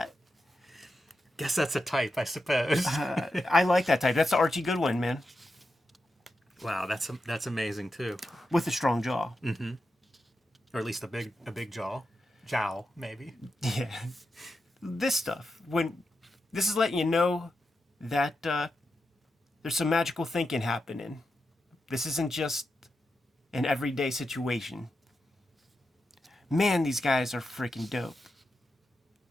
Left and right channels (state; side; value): normal; both; correlation 0.88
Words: Guess that's a type, I suppose. I like that type. That's the Archie Goodwin, man. Wow, that's amazing too. With a strong jaw. Mm-hmm. Or at least a big jaw. Jowl, maybe. Yeah. This stuff, this is letting you know that there's some magical thinking happening. This isn't just an everyday situation. Man, these guys are freaking dope.